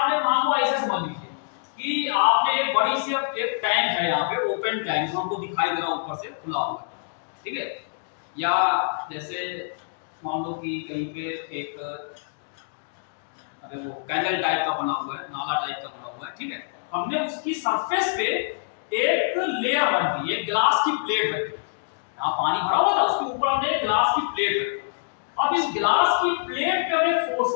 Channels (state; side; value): silent; right; digital silence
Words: मान लो ऐसे समझ लीजिए कि आपने एक बड़ी सी एक टैंक है यहाँ पे, ओपन टैंक जो हमको दिखाई दे रहा है ऊपर से खुला हुआ, ठीक है, या जैसे मान लो कि कहीं पे एक वो कैनल टाइप का बना हुआ है, नाला टाइप का बना हुआ है, ठीक है, हमने उसकी सरफेस पे एक लेयर रख दी, एक ग्लास की प्लेट रख दी, यहाँ पानी भरा हुआ था, उसके ऊपर हमने एक ग्लास की प्लेट रख दी, अब इस ग्लास की प्लेट पे हमें फोर्स